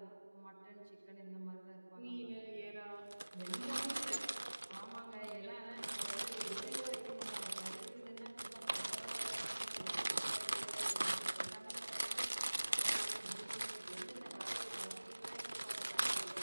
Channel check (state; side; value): inverted; both; correlation -1.00